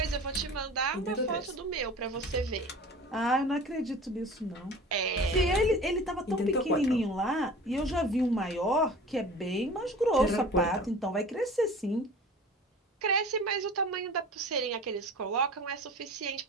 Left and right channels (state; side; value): normal; both; correlation 0.40